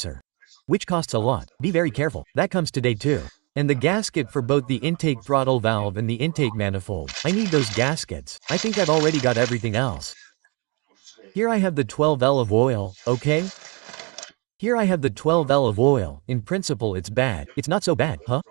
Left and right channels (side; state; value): left; quieter; 30.8 dB